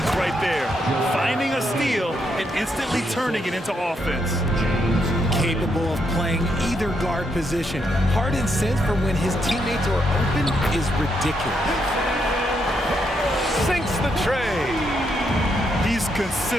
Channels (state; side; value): normal; both; correlation 0.78